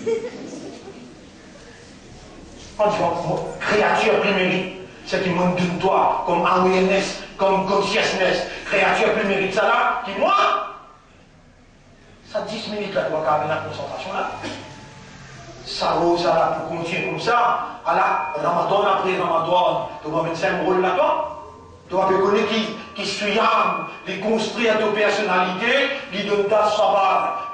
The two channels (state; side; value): identical; both; correlation 1.00